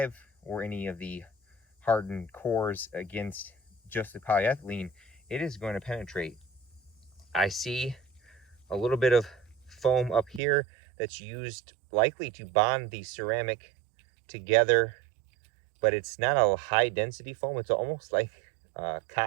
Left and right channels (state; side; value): drops out; left; at 10.4 s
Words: or any of the hardened cores against just the polyethylene, it is going to penetrate. I see a little bit of foam up here that's used likely to bond the ceramic together, but it's not a high density foam. It's almost like